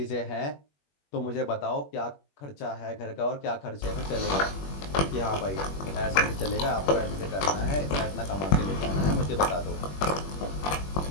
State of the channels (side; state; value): right; late; 21 ms